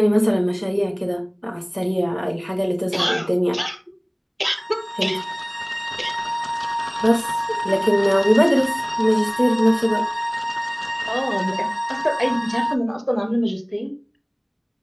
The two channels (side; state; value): both; identical; correlation 1.00